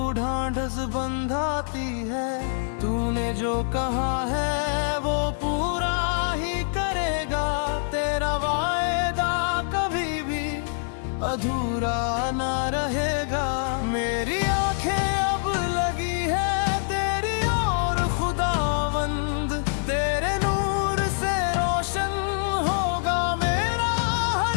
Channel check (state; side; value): silent; right; digital silence